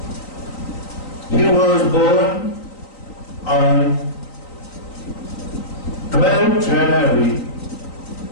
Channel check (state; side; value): late; right; 3.9 ms